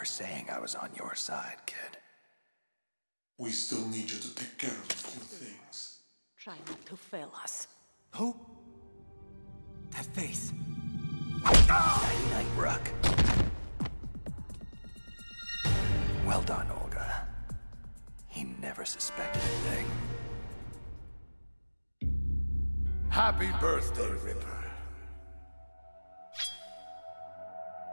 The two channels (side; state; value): both; inverted; correlation -1.00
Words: saying I was on your side, kid. We still need you to take care of a few things. Try not to fail us. Who? That face. Night-night, Rook. Well done, Olga. He never suspected a thing. Happy birthday, Ripper.